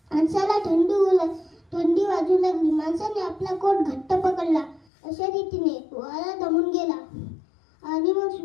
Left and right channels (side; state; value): right; drops out; at 4.9 s